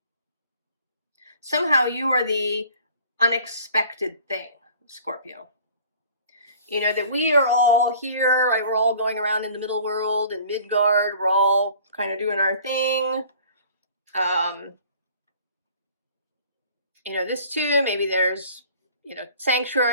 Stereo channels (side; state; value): both; inverted; correlation -0.50